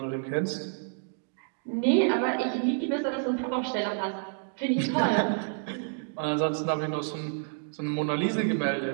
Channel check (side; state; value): left; silent; digital silence